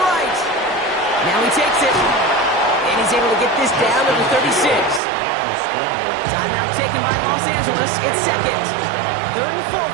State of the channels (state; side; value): drops out; left; at 5.0 s